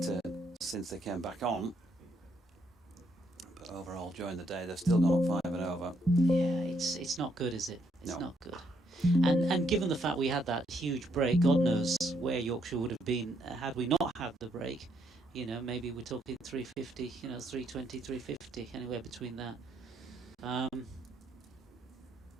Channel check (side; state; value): both; normal; correlation 0.73